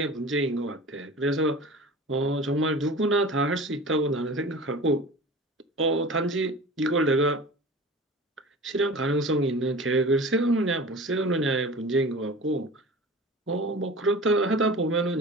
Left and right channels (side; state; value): both; normal; correlation 0.37